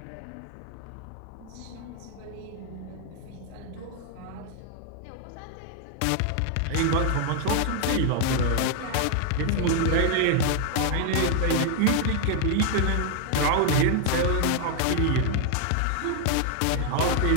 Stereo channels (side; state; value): both; different; correlation 0.00